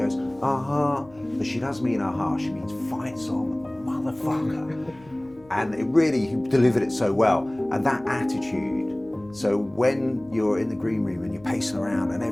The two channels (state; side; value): noise; left; hum, 26 dB below the sound